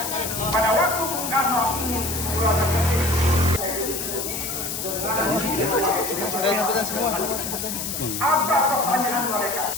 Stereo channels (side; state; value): left; noise; hiss, 4 dB below the sound